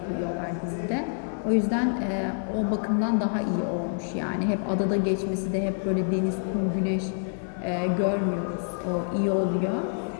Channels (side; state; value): right; silent; 60 dB below the other